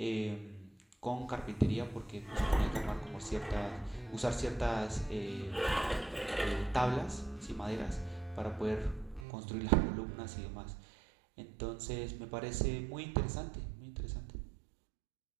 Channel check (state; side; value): drops out; left; at 9.2 s